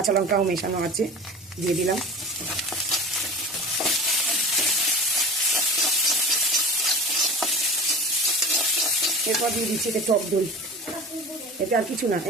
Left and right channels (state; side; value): normal; both; correlation 0.35